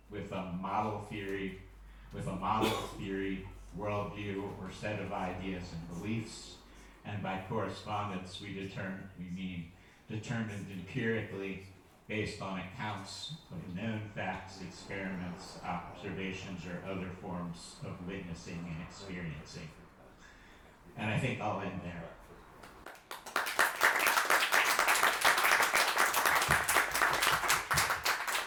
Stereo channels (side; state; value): both; identical; correlation 1.00